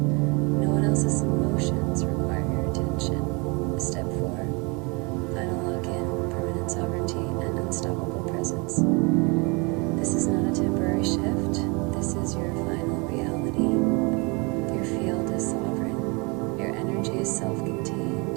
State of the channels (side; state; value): left; quieter; 29.8 dB